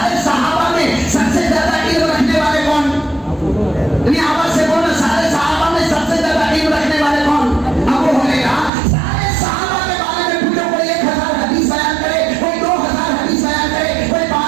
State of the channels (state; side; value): drops out; left; at 8.7 s